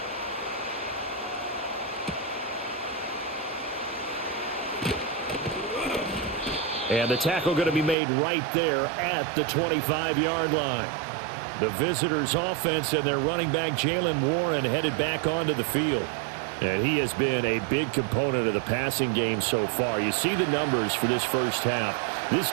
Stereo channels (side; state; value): left; drops out; at 8.0 s